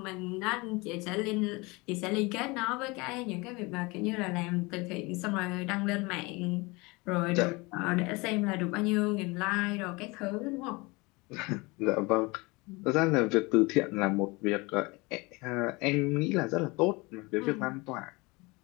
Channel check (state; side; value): quieter; right; 25.3 dB